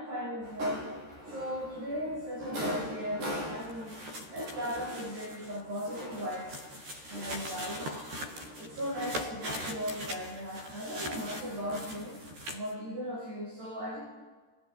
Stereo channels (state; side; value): late; left; 13 ms